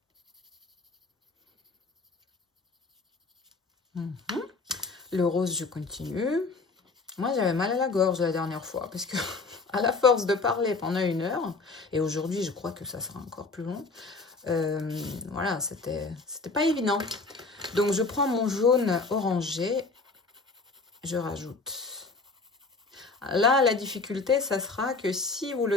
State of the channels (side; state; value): right; quieter; 3.9 dB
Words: Le rose, je continue. Moi, j'avais mal à la gorge la dernière fois parce que à la force de parler pendant 1 heure, et aujourd'hui, je crois que ça sera encore plus long, voilà, c'était pas évident. Donc, je prends mon jaune orangé, je rajoute. Là, la difficulté, ça sera que si vous